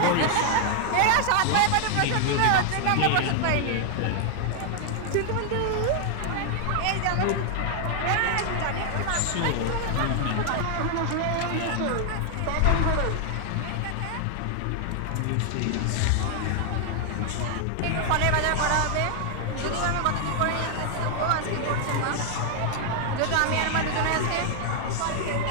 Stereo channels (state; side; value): different; both; correlation 0.00